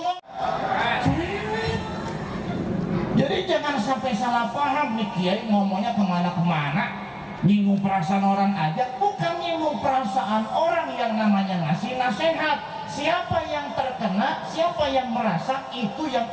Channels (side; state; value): both; identical; correlation 1.00